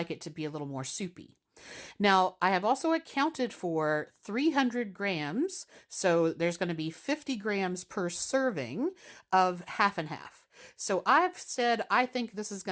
it to be a little more soupy. Now, I have also accounted for 300 grams, so there's going to be 50 grams per serving of half and half. So I've said I think this is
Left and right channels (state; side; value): identical; both; correlation 1.00